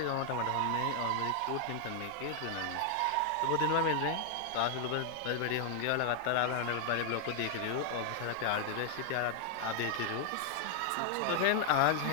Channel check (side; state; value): both; different; correlation 0.00